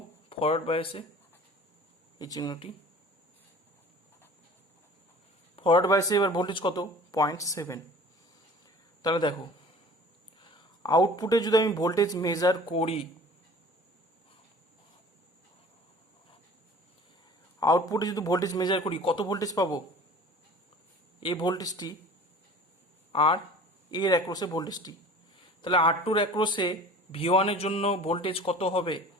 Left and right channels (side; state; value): both; normal; correlation 0.44